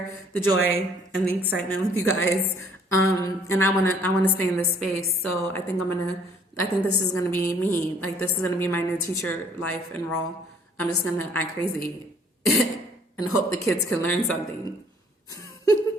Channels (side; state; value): both; normal; correlation 0.60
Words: the joy and the excitement with you guys. And I want to stay in this space. So I think this is going to be me. Like this is going to be my new teacher life and role. I'm just going to act crazy and hope the kids can learn something